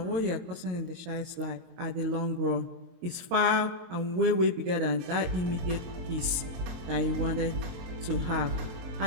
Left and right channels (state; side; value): late; left; 22 ms